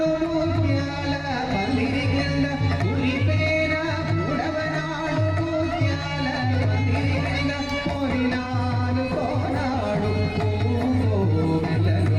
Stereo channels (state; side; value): identical; both; correlation 1.00